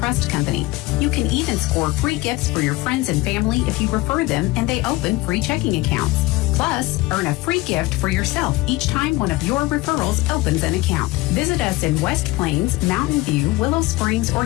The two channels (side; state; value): right; quieter; 20.2 dB